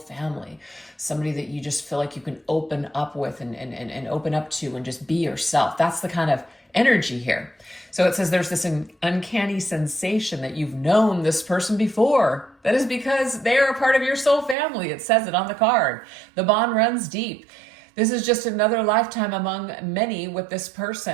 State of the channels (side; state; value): left; drops out; at 14.6 s